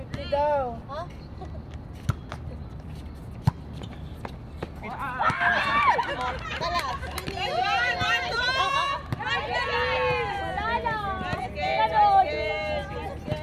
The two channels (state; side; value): identical; both; correlation 1.00